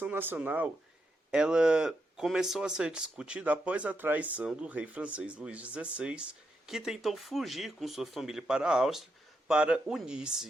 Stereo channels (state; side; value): normal; both; correlation 0.83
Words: Nacional ela começou a ser discutida após a traição do rei francês Luís XVI, que tentou fugir com sua família para a Áustria para